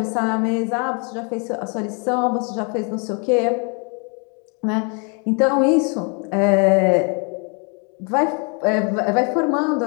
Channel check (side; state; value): right; quieter; 35.5 dB